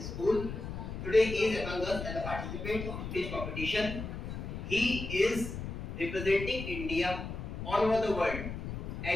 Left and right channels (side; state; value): left; noise; rumble, 6 dB below the sound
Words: School. Today he is among us as a participant of speech competition. He is representing India all over the world.